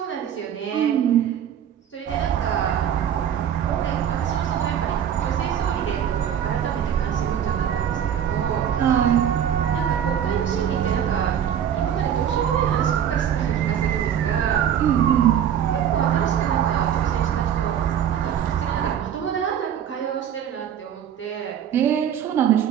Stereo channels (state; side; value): quieter; left; 9.3 dB